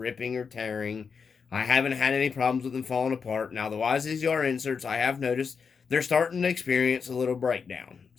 or tearing. I haven't had any problems with them falling apart. Now, the YZZR inserts, I have noticed they're starting to experience a little breakdown,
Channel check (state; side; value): quieter; right; 5.8 dB